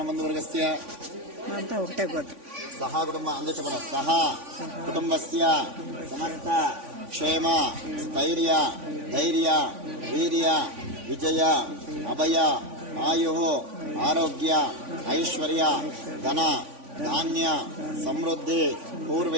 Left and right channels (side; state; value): left; late; 3.5 ms